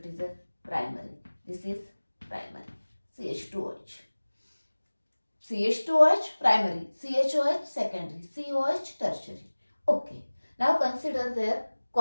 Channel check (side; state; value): both; inverted; correlation -1.00